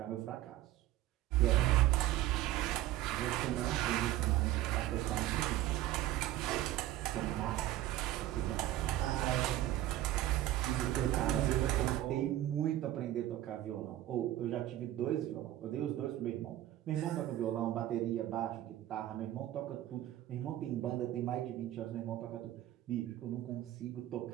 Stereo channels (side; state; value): left; quieter; 14.2 dB